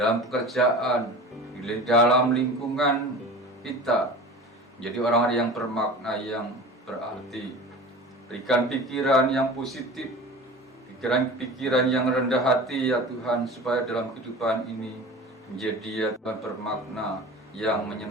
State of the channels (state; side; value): normal; both; correlation 0.36